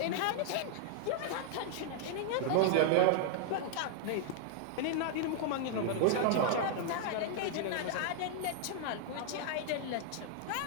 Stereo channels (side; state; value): both; different; correlation -0.01